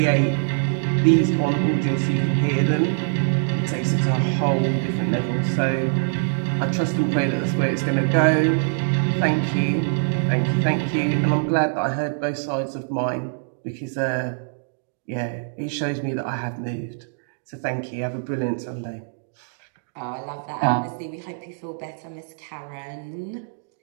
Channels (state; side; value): silent; left; digital silence